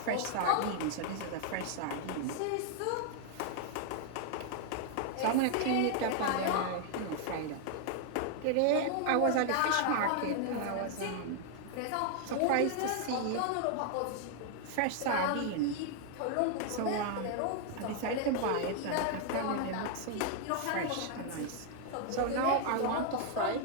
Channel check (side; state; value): both; different; correlation 0.00